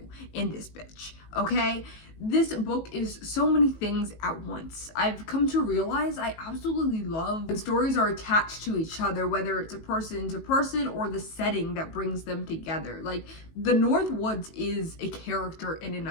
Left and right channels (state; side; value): late; right; 18 ms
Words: in this bitch, okay? This book is so many things at once. I've come to realize I absolutely love when stories are attached to each other, whether it's a person to person or the setting that brings them together. Like, the North Woods is a character in and